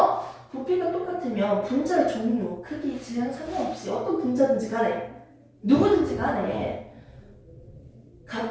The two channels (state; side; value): identical; both; correlation 1.00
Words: 부피가 똑같으면 분자의 종류, 크기, 질량 상관없이 어떤 분자든지 간에 누구든지 간에